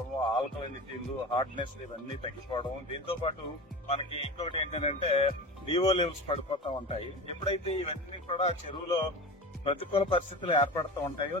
ఆల్కలినిటీలు, హార్డ్నెస్ ఇవన్నీ తగ్గిపోవడం. దీంతో పాటు మనకి ఇంకొకటి ఏంటంటే డిఓ లెవెల్స్ పడిపోతూ ఉంటాయి. ఎప్పుడైతే ఇవన్నీ కూడా చెరువులో ప్రతికూల పరిస్థితులు ఏర్పడుతూ ఉంటాయో,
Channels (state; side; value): normal; both; correlation 0.30